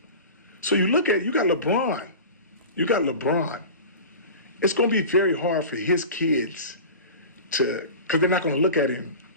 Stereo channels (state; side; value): inverted; both; correlation -0.34